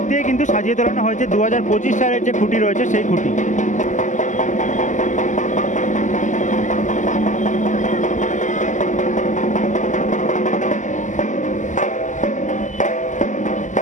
দিয়ে কিন্তু সাজিয়ে তোলানো হয়েছে 2025 সালের যে খুঁটি রয়েছে সেই খুঁটি।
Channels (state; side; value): late; right; 0.36 ms